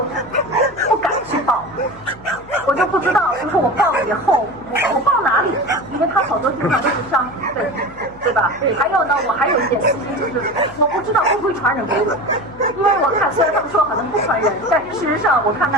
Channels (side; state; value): left; noise; hum, 23 dB below the sound